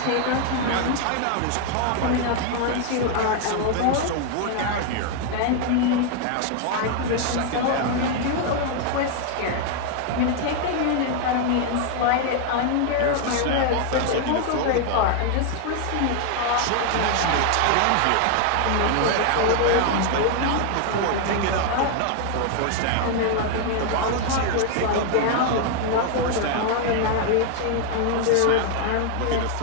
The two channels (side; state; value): both; different; correlation 0.00